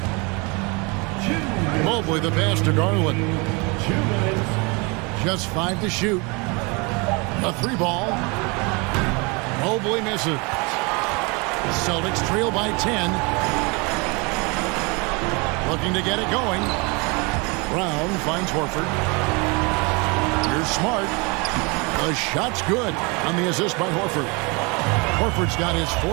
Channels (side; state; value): left; quieter; 29.1 dB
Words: Mobley the pass to Garland. 2 minutes. Just 5 to shoot. A 3 ball. Mobley misses. Celtics trail by 10. Looking to get it going. Brown finds Horford. Here's Smart. The shot's good on the assist by Horford. Horford's got his